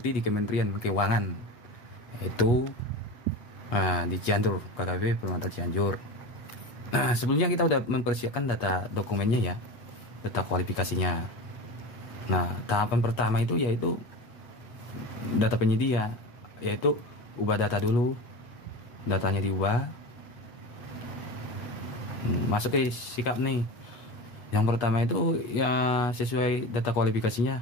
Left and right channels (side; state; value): right; late; 8.3 ms